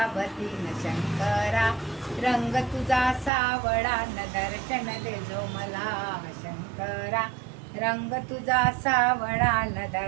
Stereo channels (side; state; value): left; drops out; at 3.3 s